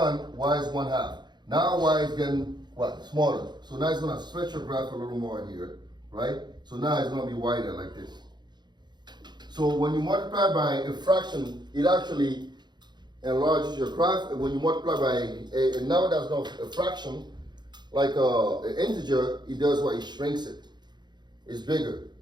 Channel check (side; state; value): left; late; 0.21 ms